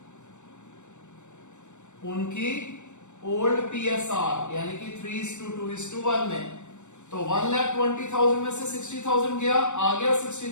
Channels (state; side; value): late; right; 0.84 ms